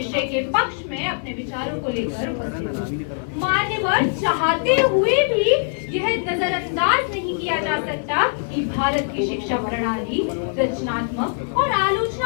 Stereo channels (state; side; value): silent; right; digital silence